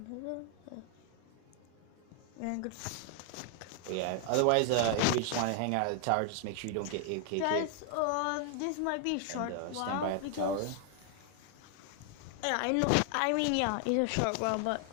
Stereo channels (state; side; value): different; both; correlation 0.00